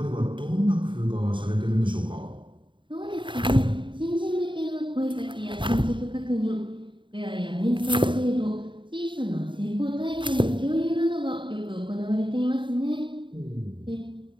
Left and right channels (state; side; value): late; left; 0.23 ms